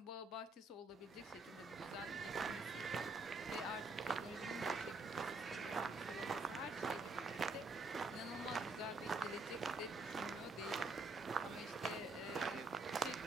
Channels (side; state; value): left; quieter; 3.2 dB